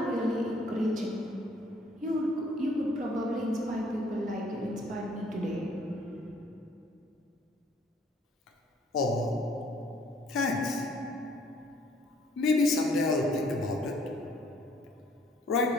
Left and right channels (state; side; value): normal; both; correlation 0.61